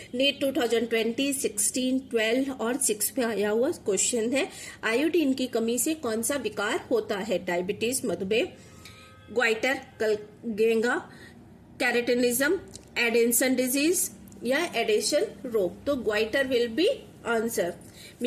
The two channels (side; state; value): both; identical; correlation 1.00